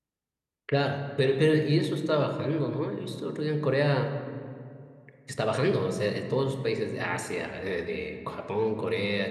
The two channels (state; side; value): identical; both; correlation 1.00